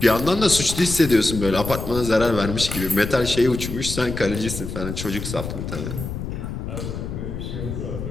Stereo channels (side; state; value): left; noise; rumble, 6 dB below the sound